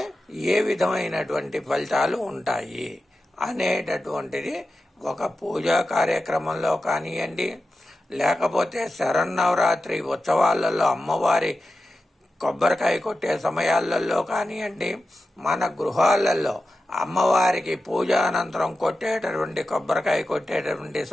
ఏ విధమైనటువంటి ఫలితాలు ఉంటాయి అనేటటువంటిది ఒక పూజా కార్యక్రమంలో కానివ్వండి, లేకపోతే శరన్నవరాత్రి ఉత్సవాలలో అమ్మవారి కొబ్బరికాయ కొట్టే సమయాలలో కానివ్వండి, మన గృహాలలో అమ్మవారికి పూజానంతరం కొట్టేటటువంటి కొబ్బరికాయ కొట్టేటటువంటి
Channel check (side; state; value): both; normal; correlation 0.92